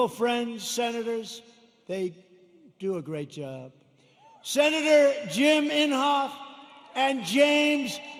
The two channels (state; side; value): identical; both; correlation 1.00